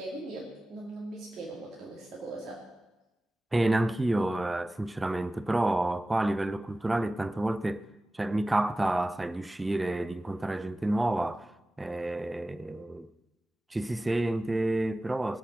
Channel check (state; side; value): normal; both; correlation 0.97